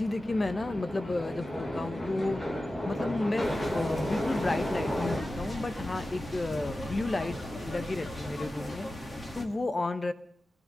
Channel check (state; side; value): normal; both; correlation 0.94